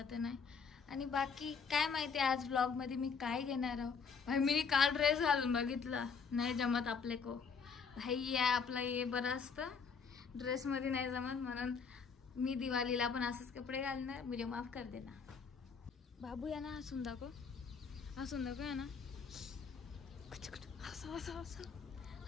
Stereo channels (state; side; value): quieter; right; 5.7 dB